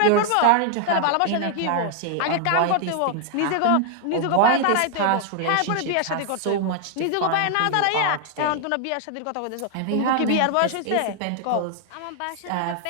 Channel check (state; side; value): different; both; correlation 0.00